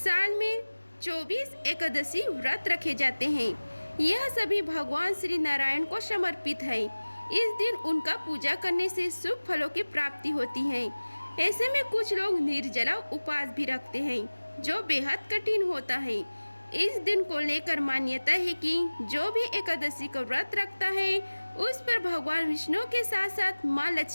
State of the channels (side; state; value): both; inverted; correlation -1.00